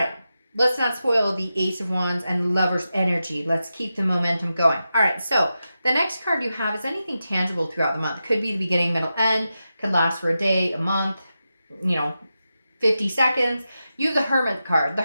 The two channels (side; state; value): both; inverted; correlation -0.90